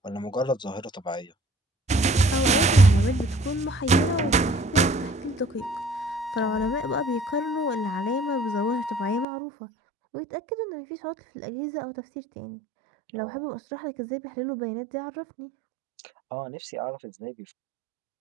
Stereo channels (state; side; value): drops out; left; at 9.2 s